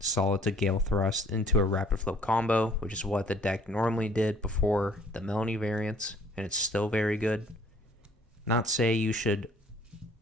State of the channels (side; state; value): both; normal; correlation 0.56